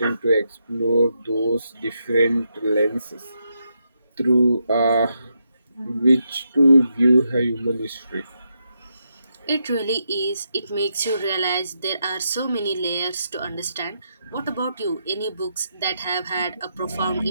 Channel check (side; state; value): both; inverted; correlation -0.82